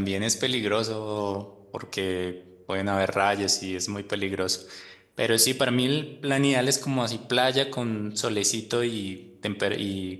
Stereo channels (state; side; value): identical; both; correlation 1.00